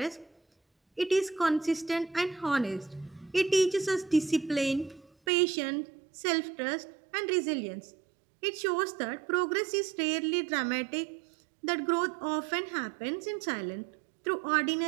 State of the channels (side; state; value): left; drops out; at 5.1 s